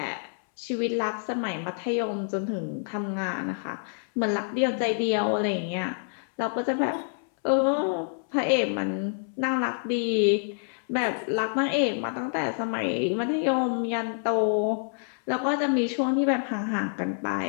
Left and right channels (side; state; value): right; silent; 59 dB below the other